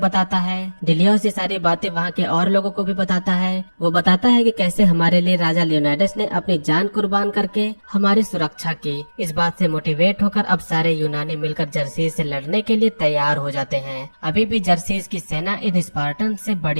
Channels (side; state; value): both; inverted; correlation -1.00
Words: बताता है। डिलियोस ये सारी बातें वहाँ के और लोगों को भी बताता है। वो बताता है कि कैसे हमारे लिए राजा लियोनाइडस ने अपनी जान कुर्बान करके हमारी सुरक्षा की। इस बात से मोटिवेट होकर अब सारे यूनानी मिलकर जर्सीस से लड़ने के लिए तैयार हो जाते हैं। अभी भी जर्सीस की सेना इन स्पार्टन से